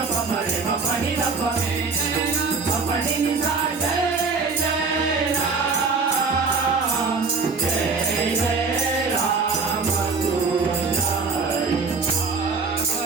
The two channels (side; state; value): left; quieter; 4.5 dB